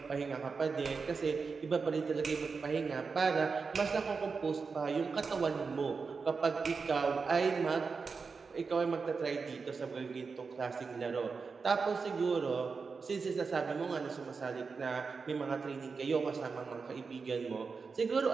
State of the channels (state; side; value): quieter; left; 4.9 dB